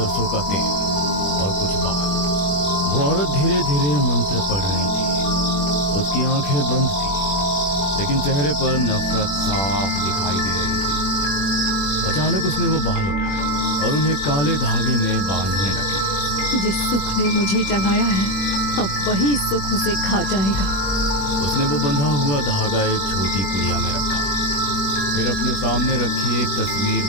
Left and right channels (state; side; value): late; right; 21 ms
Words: का तेल और कुछ बाल। वो औरत धीरे धीरे मंत्र पढ़ रही थी। उसकी आंखें बंद थी, लेकिन चेहरे पर नफरत साफ दिखाई दे रही थी। अचानक उसने वो बाल उठाए और उन्हें काले धागे में बांधने लगी। जिस सुख ने मुझे जलाया है, अब वही सुख उसे खा जाएगा। उसने वो बंधा हुआ धागा एक छोटी पुड़िया में रखा, फिर अपने सामने रखी एक तस्वीर